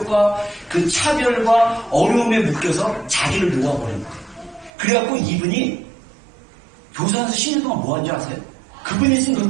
그 차별과 어려움에 묶여서 자기를 놓아버린 거예요. 그래갖고 이분이 교사에서 10년 동안 뭐 한지 아세요? 그분이 쓴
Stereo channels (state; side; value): drops out; left; at 4.7 s